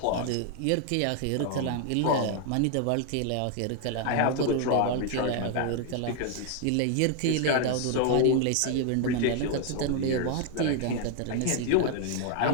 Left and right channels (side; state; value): both; different; correlation 0.00